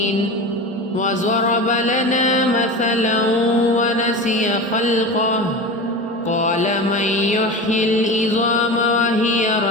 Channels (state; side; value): normal; both; correlation 0.28